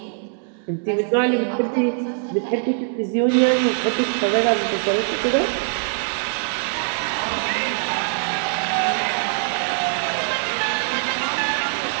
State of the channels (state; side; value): silent; left; 64 dB below the other